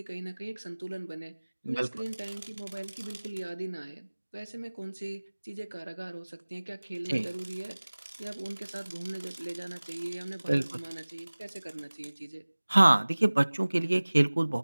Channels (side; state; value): both; inverted; correlation -1.00